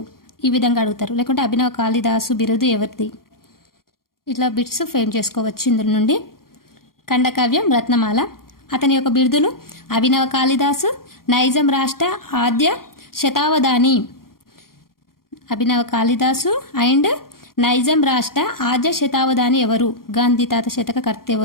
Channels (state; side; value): late; right; 0.92 ms